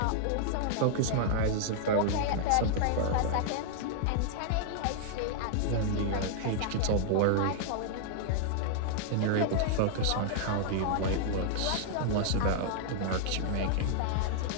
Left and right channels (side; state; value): both; different; correlation -0.01